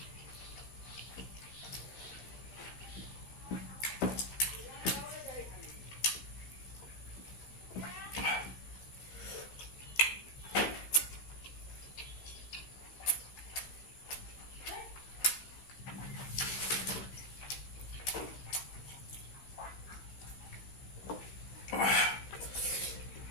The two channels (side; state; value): right; late; 16 ms